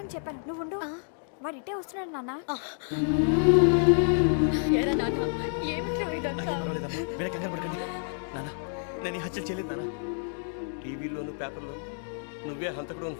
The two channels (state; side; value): silent; right; digital silence